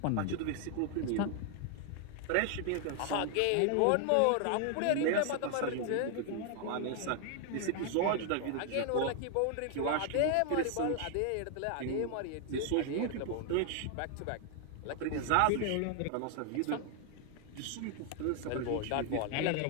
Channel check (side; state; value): both; different; correlation 0.00